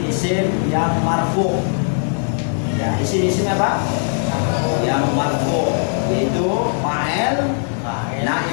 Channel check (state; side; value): silent; right; digital silence